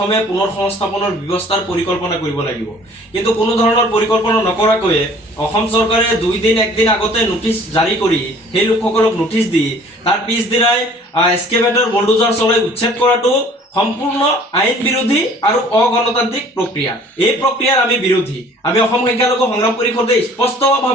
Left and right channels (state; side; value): normal; both; correlation 0.52